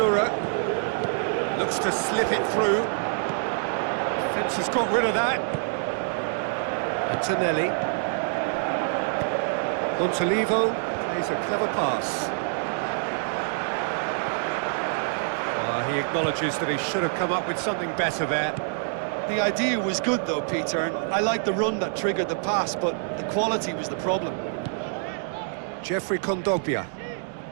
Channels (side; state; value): left; silent; digital silence